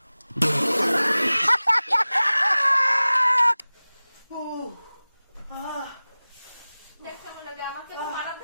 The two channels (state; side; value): inverted; both; correlation -0.98